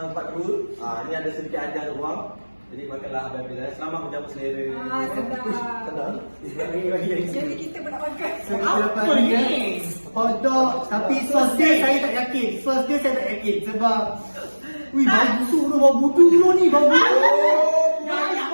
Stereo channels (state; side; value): inverted; both; correlation -1.00